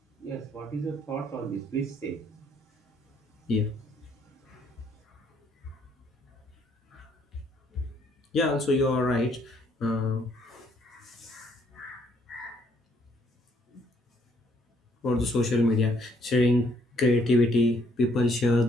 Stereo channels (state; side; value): normal; both; correlation 0.67